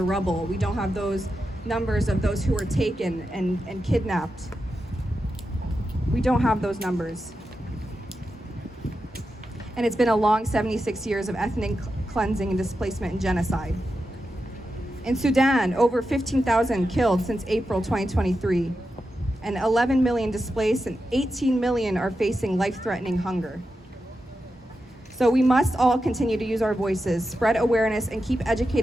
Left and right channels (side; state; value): both; normal; correlation 0.89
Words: rubble. We don't have those numbers of those who were taken and kidnapped. We don't have those numbers. And it's been a long 76 years of ethnic cleansing and displacement and genocide. In Sudan, over 15,000 killed since April 2023, and 11 million displaced, and 18 million are facing life-threatening hunger. So we must all continue to use our voices, spread awareness, and keep